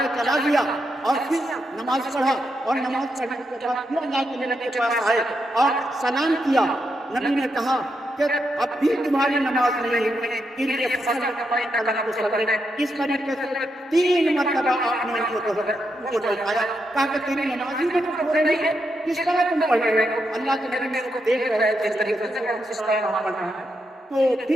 وہ چلا گیا اور پھر نماز پڑھا اور نماز پڑھنے کے بعد پھر اللہ کے نبی کے پاس آئے اور سلام کیا۔ نبی نے کہا کہ اب بھی تمہاری نماز نہیں ہوئی، اس طریقے سے 3 مرتبہ آپ نے ان کو دکھایا، کہا کہ تیری نماز ہی میں ہو رہی ہے، کس طرح تم پڑھ رہے ہو؟ اللہ کے نبی کو دیکھ رہے تھے اس طریقے سے اس طرح نماز پڑھنا ہے، تو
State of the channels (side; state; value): both; normal; correlation 0.83